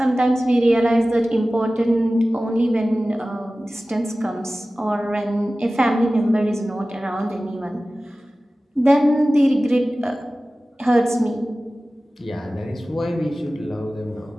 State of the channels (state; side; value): normal; both; correlation 0.96